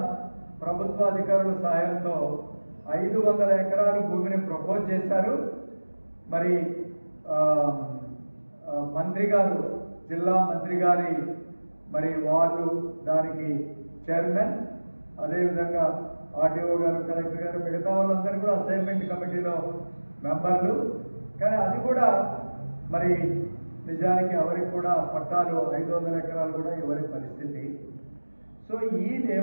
ప్రభుత్వ అధికారుల సహాయంతో 500 ఎకరాల భూమిని ప్రపోజ్ చేశారు. మరి మంత్రి గారు, జిల్లా మంత్రి గారి మరి వాళ్ళు దానికి చైర్మన్, అదేవిధంగా ఆర్డీఓ గారు, కలెక్టర్ గారు, మిగతా వాళ్ళందరూ కూడా అసైన్మెంట్ కమిటీలో మెంబర్లు. కానీ అది కూడా మరి నిజానికి ఎవరికి కూడా పట్టాలు 500 ఎకరాలు కూడా ఎవరి పరిస్థితి. సో ఈ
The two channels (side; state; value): both; inverted; correlation -1.00